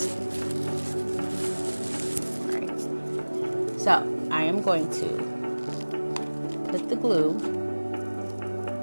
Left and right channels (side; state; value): both; inverted; correlation -1.00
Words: All right. So I am going to put the glue